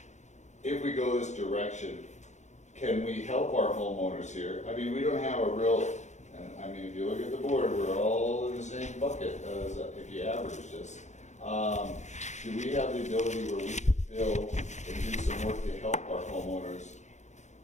if we go this direction, can we help our homeowners here? I mean, we don't have a real, and I mean, if you look at the board, we're all in the same bucket as if you average this. Do we have the ability where we can build and do some work to help our homeowners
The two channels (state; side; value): late; right; 0.34 ms